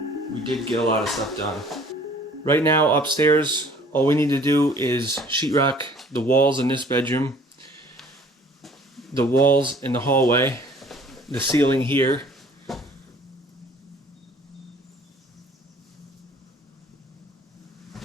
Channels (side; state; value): both; normal; correlation 0.53